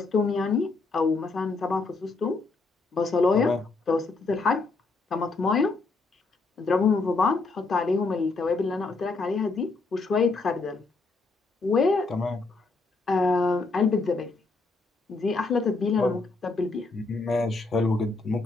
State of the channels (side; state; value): right; quieter; 3.7 dB